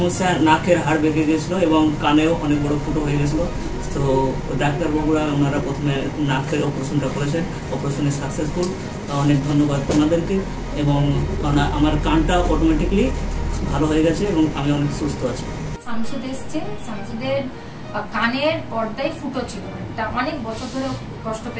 নাকের হাড় বেঁকে গেছিলো এবং কানেও অনেক বড় ফুটো হয়ে গেছিলো। তো ডাক্তারবাবুরা ওনারা প্রথমে নাকের অপারেশনটা করেছেন, অপারেশনে সাকসেসফুল। অনেক ধন্যবাদ ওনাদেরকে। এবং আমার কানটা অটোমেটিকলি ভালো হয়ে গেছে এবং আমি অনেক সুস্থ আছি। শামসুদ এসছে, শামসুদের কানের পর্দায় ফুটো ছিল, এটা অনেক বছর ধরে কষ্ট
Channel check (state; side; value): identical; both; correlation 1.00